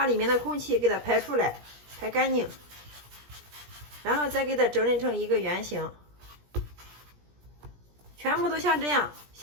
里面的空气给它排出来，排干净。然后再给它整理成一个圆形，全部都像这样，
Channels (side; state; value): left; late; 17 ms